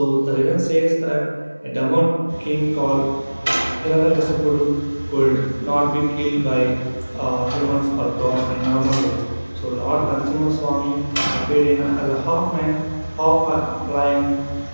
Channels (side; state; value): both; inverted; correlation -1.00